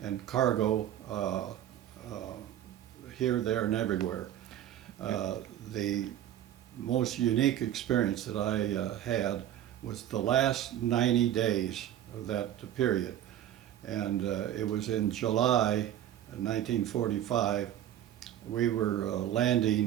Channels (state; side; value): quieter; left; 11.6 dB